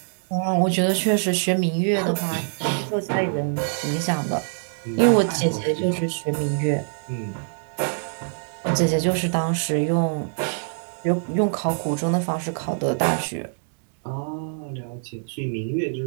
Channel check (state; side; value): silent; left; digital silence